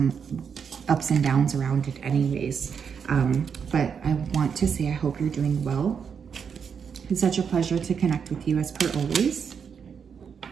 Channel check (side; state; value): left; quieter; 6.8 dB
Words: ups and downs around it anyways. But I want to say I hope you're doing well. It's such a pleasure to connect with you as per always.